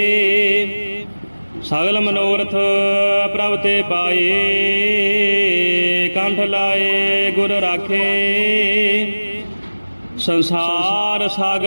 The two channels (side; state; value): both; inverted; correlation -1.00